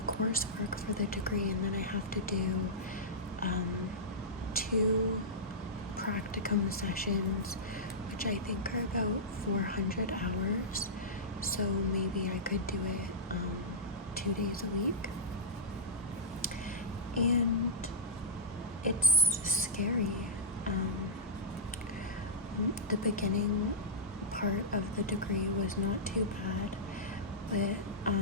coursework for the degree, and then I have to do 2 practicum sessions, which I think are about 400 hours. So maybe I could do it 2 days a week. And it's scary. The beginning part of the degree was not too bad, but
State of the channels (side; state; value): both; normal; correlation -0.15